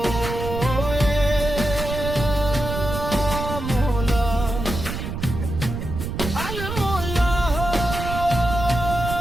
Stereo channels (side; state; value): right; noise; rumble, 5 dB below the sound